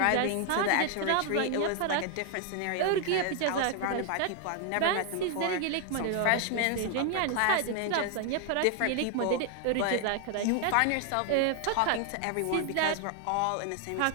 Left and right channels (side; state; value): both; different; correlation 0.00